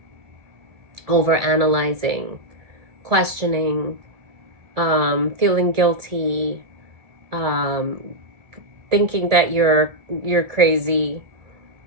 over analyzing, questioning, feeling guilty, thinking that you're crazy.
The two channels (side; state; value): left; late; 1.7 ms